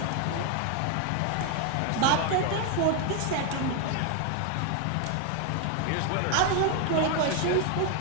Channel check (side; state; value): both; different; correlation 0.01